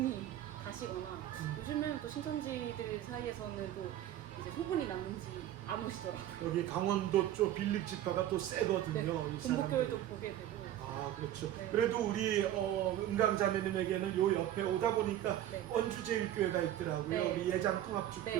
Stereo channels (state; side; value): quieter; left; 12.4 dB